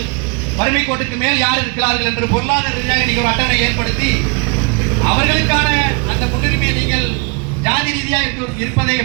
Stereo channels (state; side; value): quieter; left; 32.8 dB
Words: வறுமை கோட்டுக்கு மேல் யார் இருக்கிறார்கள் என்று பொருளாதார ரீதியாக நீங்கள் ஒரு அட்டவணை ஏற்படுத்தி அவர்களுக்கான அந்த முன்னுரிமையை நீங்கள் ஜாதி ரீதியாக இருப்பதை